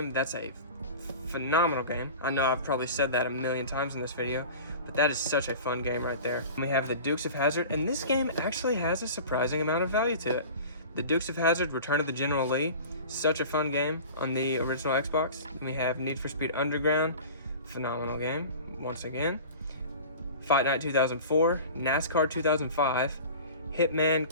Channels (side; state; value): both; inverted; correlation -0.38